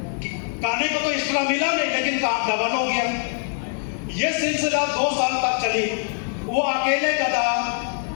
खाने को तो एक्स्ट्रा मिला नहीं, लेकिन काम डबल हो गया। यह सिलसिला 2 साल तक चली। वो अकेले गधा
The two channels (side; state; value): right; silent; 60 dB below the other